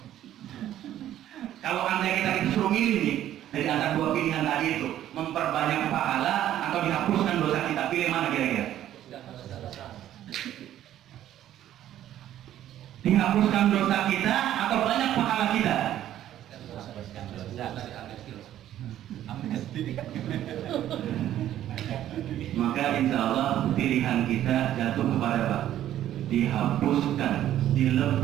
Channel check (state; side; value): quieter; left; 12.1 dB